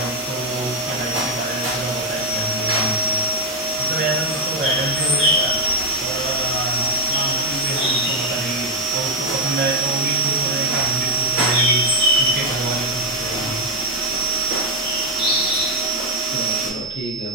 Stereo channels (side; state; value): both; normal; correlation -0.01